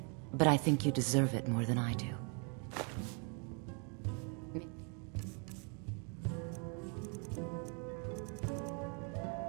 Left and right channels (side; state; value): left; quieter; 37.7 dB